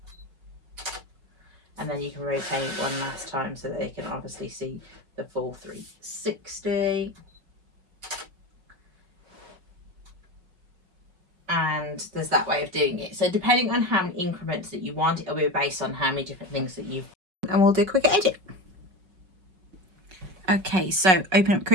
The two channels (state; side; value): late; left; 5.3 ms